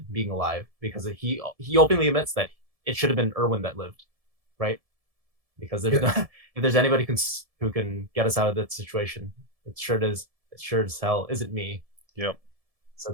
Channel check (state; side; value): late; left; 1.7 ms